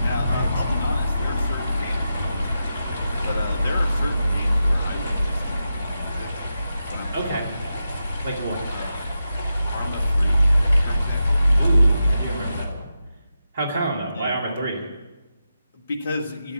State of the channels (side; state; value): both; inverted; correlation -0.89